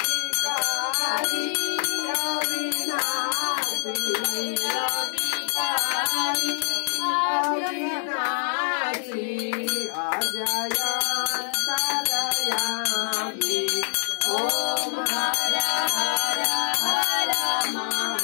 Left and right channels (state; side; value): silent; right; 59 dB below the other